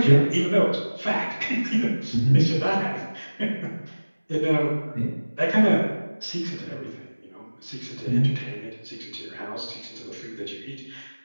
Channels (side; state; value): both; inverted; correlation -1.00